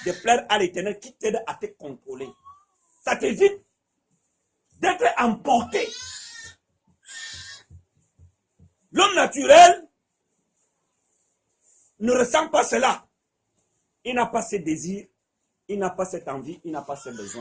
de plaire à l'Éternel qui t'aide à te contrôler. Ça t'évite d'être emporté. L'homme naturel ne ressent pas cela. Il n'a pas ses désirs, il n'a pas cette envie, il n'a pas ses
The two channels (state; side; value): identical; both; correlation 1.00